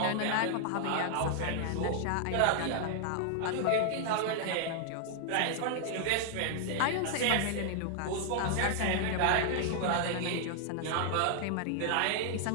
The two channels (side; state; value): both; different; correlation 0.00